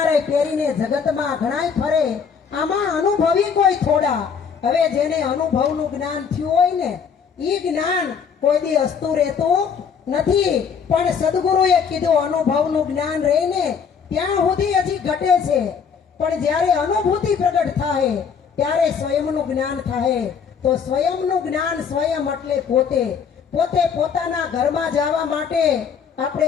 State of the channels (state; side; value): quieter; right; 6.6 dB